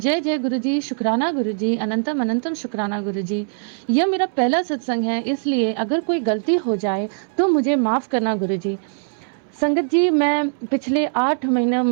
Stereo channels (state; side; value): silent; left; 65 dB below the other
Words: जय गुरुजी, शुक्राना गुरुजी, अनंतम अनंतम शुक्राना गुरुजी। यह मेरा पहला सत्संग है, इसलिए अगर कोई गलती हो जाए तो मुझे माफ़ करना गुरुजी। संगत जी, मैं पिछले 8